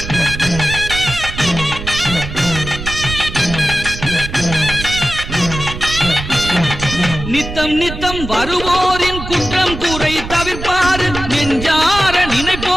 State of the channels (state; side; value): noise; right; rumble, 8 dB below the sound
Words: நித்தம் நித்தம் வருவோரின் குற்றம் குறை தவிர்ப்பாரு, நெஞ்சார